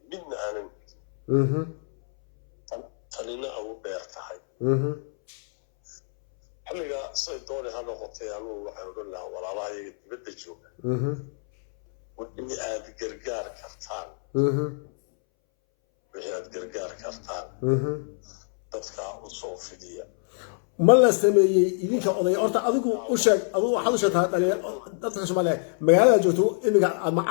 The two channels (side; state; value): right; silent; 61 dB below the other